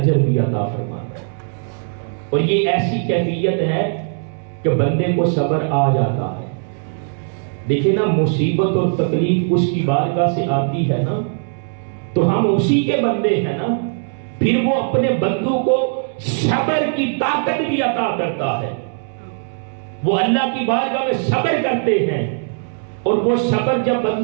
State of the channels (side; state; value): left; silent; digital silence